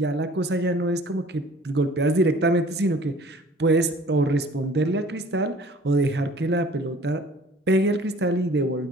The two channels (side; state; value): both; normal; correlation 0.50